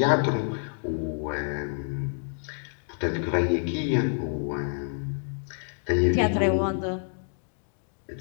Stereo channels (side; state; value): right; silent; 57 dB below the other